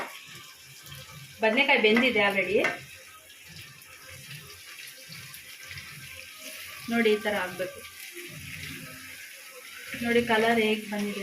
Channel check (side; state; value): both; identical; correlation 1.00